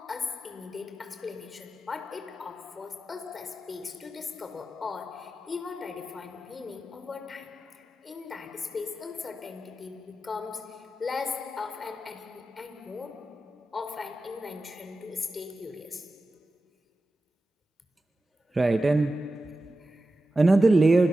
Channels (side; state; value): both; normal; correlation 0.92